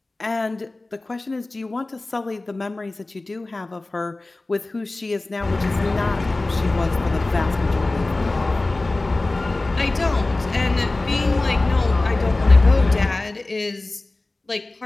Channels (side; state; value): right; quieter; 3.0 dB